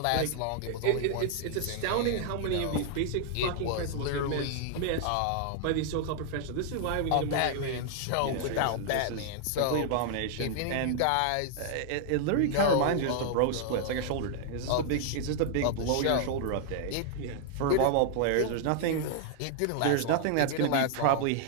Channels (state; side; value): different; both; correlation -0.01